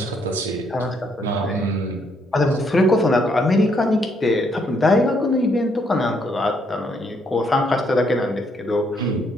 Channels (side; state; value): both; normal; correlation 0.72